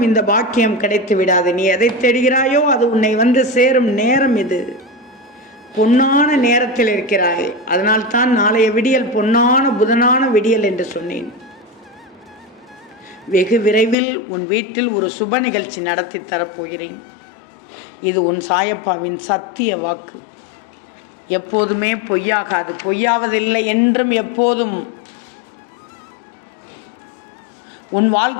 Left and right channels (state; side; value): drops out; right; at 14.0 s